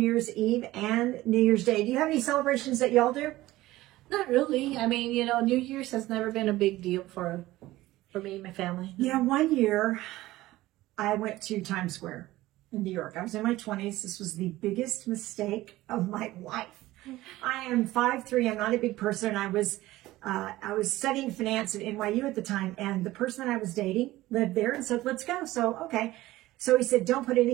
Eve and New Year's Day. Do you have any celebrations that y'all do? Not really. I mean, you know, New Year's has never been a big deal for me and my family. Yeah, one year I went to Times Square in New York. I was in my 20s. This was the biggest mistake of my life. I am 5'3". I'm not a big person. I was studying finance at NYU at the time, and the person that I was dating lived there and said, let's go. So, okay. So he said, don't put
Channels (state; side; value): quieter; left; 17.1 dB